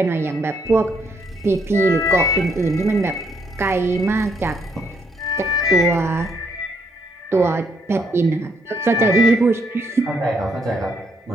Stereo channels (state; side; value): normal; both; correlation 0.72